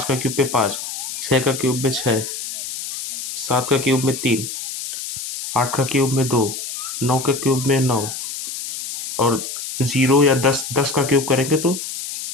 का क्यूब पे 5, 6 का क्यूब में 6, 7 का क्यूब में 3, 8 का क्यूब में 2, 9 का क्यूब में 9, और 0 या 10 का क्यूब करेंगे तो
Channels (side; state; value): left; noise; hiss, 7 dB below the sound